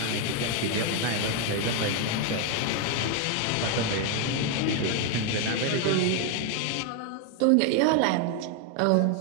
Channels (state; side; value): different; both; correlation 0.01